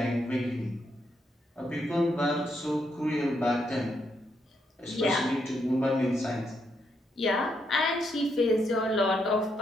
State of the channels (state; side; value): normal; both; correlation 0.78